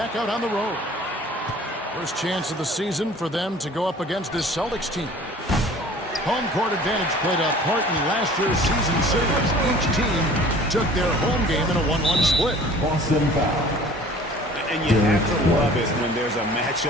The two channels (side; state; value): both; normal; correlation 0.48